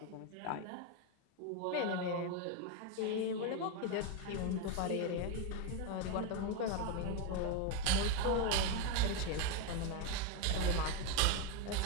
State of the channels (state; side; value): different; both; correlation 0.03